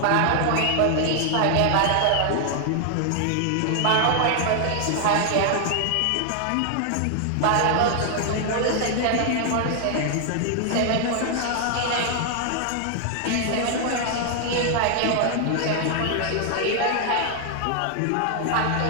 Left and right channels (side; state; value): both; different; correlation 0.00